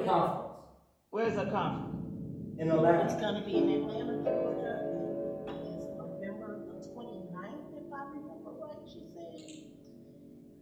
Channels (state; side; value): identical; both; correlation 1.00